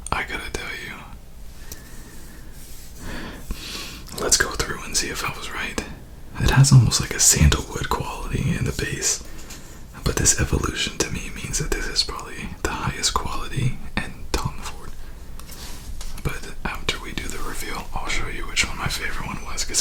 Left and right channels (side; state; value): both; identical; correlation 1.00